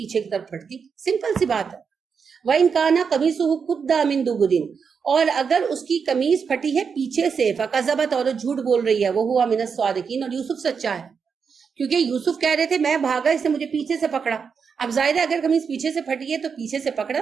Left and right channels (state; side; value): quieter; left; 6.1 dB